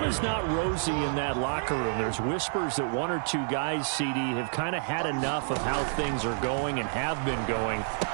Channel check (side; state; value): left; silent; digital silence